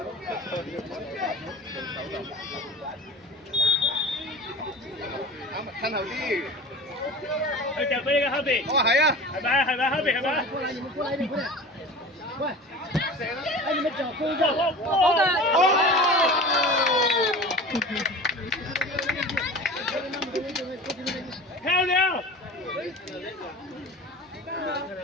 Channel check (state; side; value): normal; both; correlation 0.36